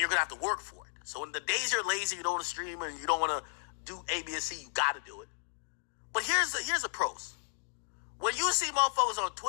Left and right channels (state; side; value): silent; right; digital silence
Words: going to have to work for it. So in the days you're lazy, you don't want to stream and you don't want to do A, B, and C, you got to do it. But here's the pros. When you see motherfuckers on